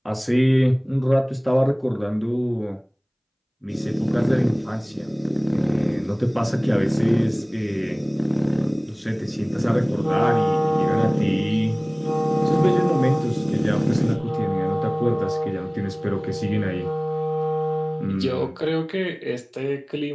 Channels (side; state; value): both; identical; correlation 1.00